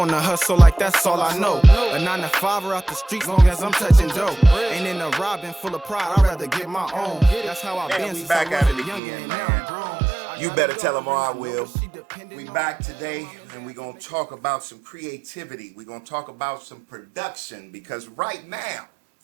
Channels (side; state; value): left; drops out; at 9.0 s